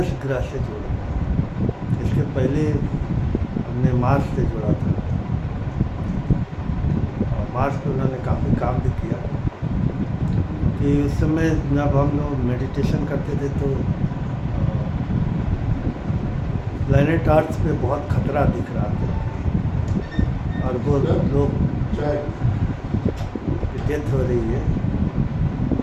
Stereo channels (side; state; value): both; identical; correlation 1.00